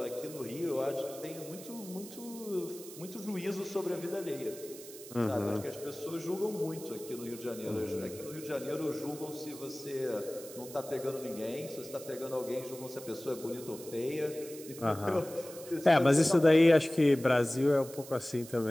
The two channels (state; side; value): noise; right; hiss, 15 dB below the sound